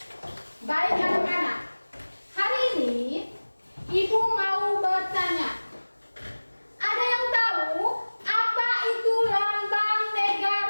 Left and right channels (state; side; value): inverted; both; correlation -1.00